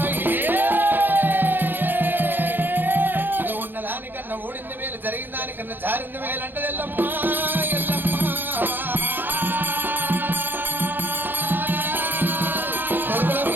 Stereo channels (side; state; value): left; late; 0.094 ms